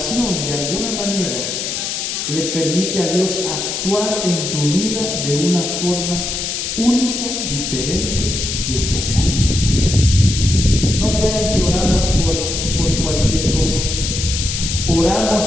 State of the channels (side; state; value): left; noise; hiss, 3 dB below the sound